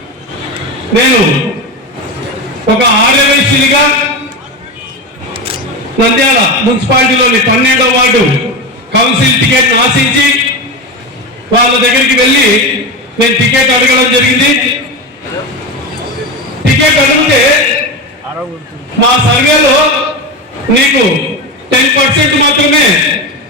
నేను ఒక ఆర్యవైశ్యునిగా నంద్యాల మున్సిపాలిటీలోని 12వ వార్డు కౌన్సిల్ టికెట్ ఆశించి వాళ్ళ దగ్గరికి వెళ్ళి నేను టికెట్ అడగడం జరిగింది. టికెట్ అడిగితే మా సర్వేలో నీకు 10% మాత్రమే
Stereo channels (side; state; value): both; normal; correlation 0.20